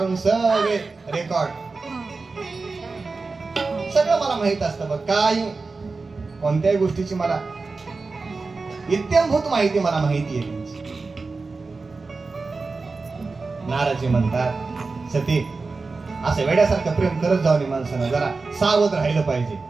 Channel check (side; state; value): left; quieter; 4.0 dB